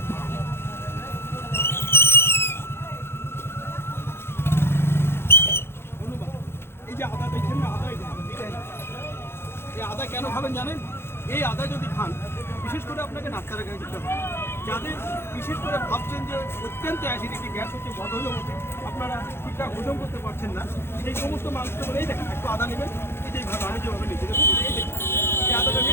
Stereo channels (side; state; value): right; late; 0.12 ms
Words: এই যে আদা দেখছেন না, এই আদা কেন খাবেন জানেন? এই আদা যদি খান, বিশেষ করে আপনাকে ডাক্তারের কাছে যেতে হবে। যাদের বিশেষ করে ভাবছেন যে অত্যন্ত অ্যাসিডিটি, গ্যাস হচ্ছে, বদহজম হচ্ছে, আপনারা ঠিকঠাক হজম করতে পারছেন না, সেই সমস্ত মানুষকে বলেই দেখেন একটু আদা নেবেন। এই যে আমি যেভাবে নিচ্ছি দেখুন, এই দেখুন, এই আদাটা